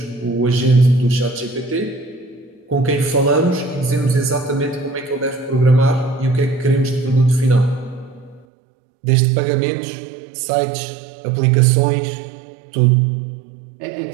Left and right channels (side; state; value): left; drops out; at 8.5 s